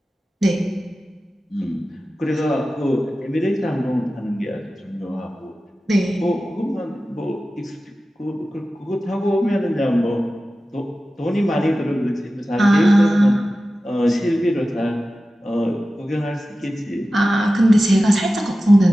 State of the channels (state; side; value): normal; both; correlation 0.95